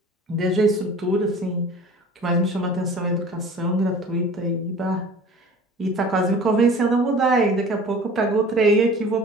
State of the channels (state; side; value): normal; both; correlation 0.43